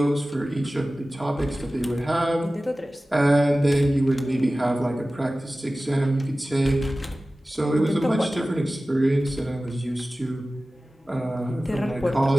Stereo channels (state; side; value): normal; both; correlation 0.96